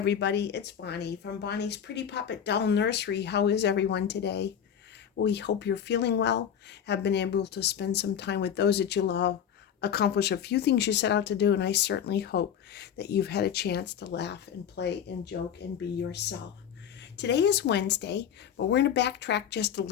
it's Bonnie from Bonnie's Pretty Poppet Doll Nursery. How is everyone today? We hope you're feeling well, have been able to spend some time with those that you love, accomplish a few things you set out to do, and I certainly hope that you've had a chance to laugh and play and joke and be yourself. Today is Wednesday, but we're going to backtrack just a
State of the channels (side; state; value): right; quieter; 8.7 dB